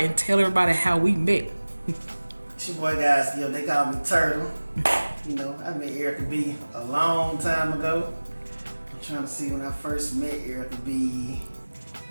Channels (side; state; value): both; inverted; correlation -1.00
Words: tell everybody how we met. It's your boy, guys. They call me Turtle. I met Erica B a long time ago. I'm trying to see when I first met Erica B.